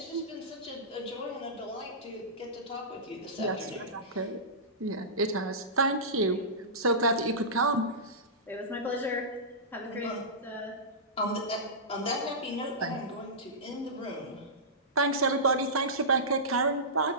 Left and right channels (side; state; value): both; normal; correlation -0.18